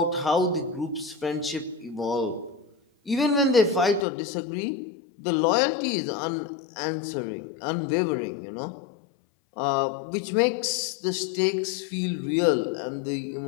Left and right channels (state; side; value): drops out; right; at 4.0 s